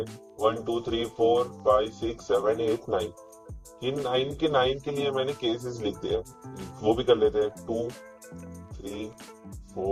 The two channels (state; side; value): identical; both; correlation 1.00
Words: 1 2 3 4 5 6 7 8 9। इन 9 के 9 के लिए मैंने केसेस लिख दिए, वो भी कर लेते हैं 2 3